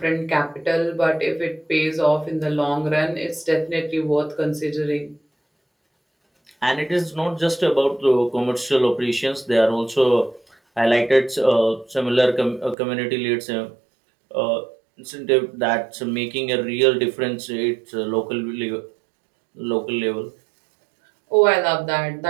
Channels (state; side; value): drops out; left; at 12.8 s